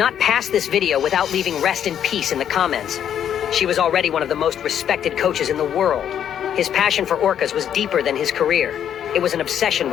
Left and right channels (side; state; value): right; quieter; 9.4 dB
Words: pass this video without leaving rest in peace in the comments. She was already one of the most respected coaches in the world. His passion for orcas was deeper than his career. It was an obsession